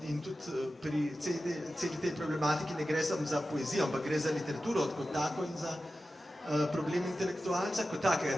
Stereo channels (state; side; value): normal; both; correlation 0.93